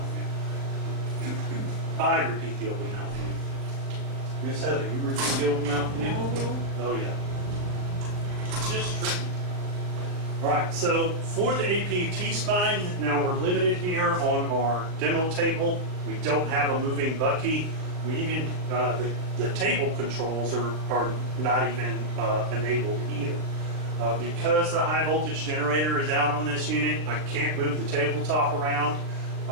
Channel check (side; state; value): left; late; 39 ms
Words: view. I repeat the open mouth view. Miss Heather, you repeat the open mouth view? Oh yeah. It's just tricky. All right, so for the AP T-spine, now we're limited here on our demo table. We don't have a moving bucky. We even, the table controls are not even enabled either. Because the high voltage generator is out on this unit, I can't move the tabletop around.